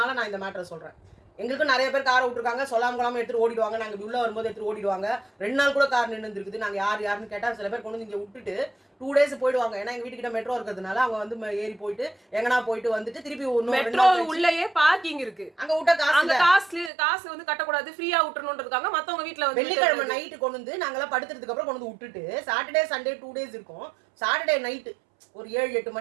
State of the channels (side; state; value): left; drops out; at 16.9 s